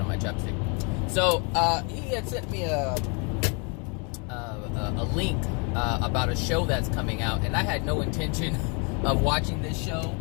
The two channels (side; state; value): right; quieter; 34.6 dB